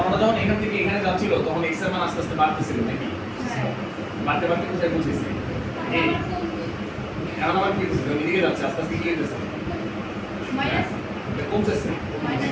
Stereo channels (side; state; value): both; identical; correlation 1.00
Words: যখন এখান থেকে এখানে যাচ্ছিল, তখন x এর মান আস্তে আস্তে বাড়তেছিল নাকি? বাড়তে বাড়তে কোথায় পৌঁছেছে? এই এখন আবার কি হচ্ছে? এদিকে যাচ্ছে, আস্তে আস্তে কি হইতেছে? মাইনাস কমতেছে